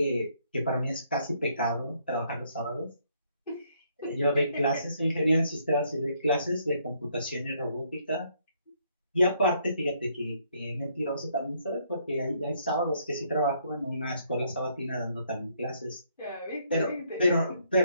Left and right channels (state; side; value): inverted; both; correlation -0.70